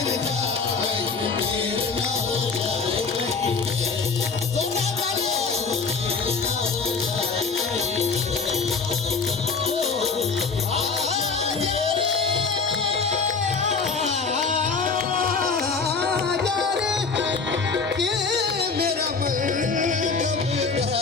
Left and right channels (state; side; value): quieter; right; 4.8 dB